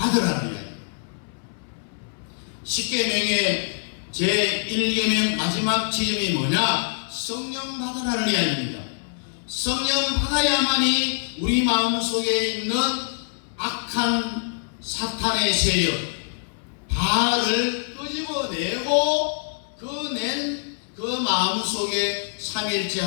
이야기입니다. 십계명의 제1계명 마지막 지점이 뭐냐? 성령 받으라는 이야기입니다. 성령 받아야만이 우리 마음속에 있는 악한 사탄의 세력 바알을 끄집어내고 그 마음속에 삼일체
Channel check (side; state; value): right; silent; 62 dB below the other